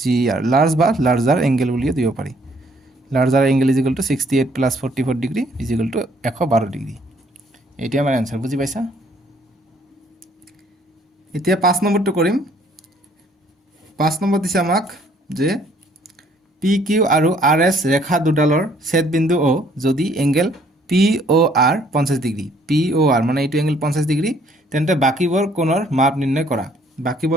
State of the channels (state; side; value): normal; both; correlation 0.62